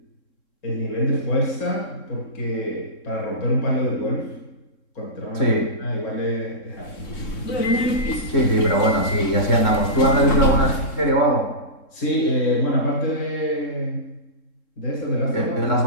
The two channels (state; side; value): late; right; 3.7 ms